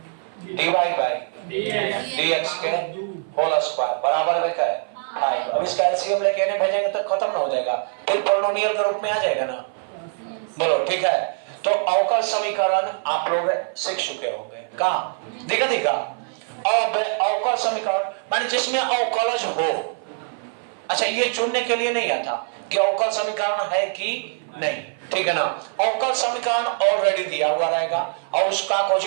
d y by d x के होल स्क्वायर बराबर में क्या है 5। अब इस कैल्शियम लेके इन्हें भेजेंगे तो खत्म ना हो जाएगा, फिर पोलिनोमियल के रूप में आ जाएगा ना, बोलो ठीक है। तो अवकल समीकरण आप लोग सीख चुके होंगे, कहा दिखा दिखा। अब अवकल समीकरण माने जिसमें अवकलज हो, अच्छा ये चुनने के लिए नहीं आता कि अवकल समीकरण है कि नहीं, ठीक है ना। अवकल समीकरण ऑलरेडी दिया हुआ रहेगा और उसका कुछ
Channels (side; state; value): left; silent; 56 dB below the other